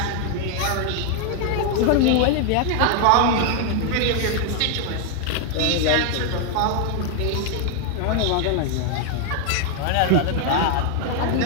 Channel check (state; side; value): different; both; correlation 0.00